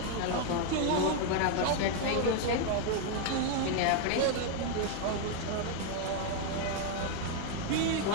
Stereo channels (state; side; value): different; both; correlation 0.01